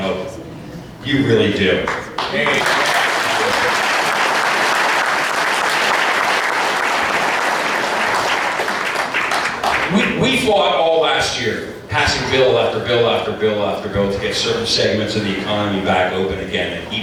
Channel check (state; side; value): identical; both; correlation 1.00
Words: You really do. We fought all last year, passing bill after bill after bill after bill to get certain segments of the economy back open again, and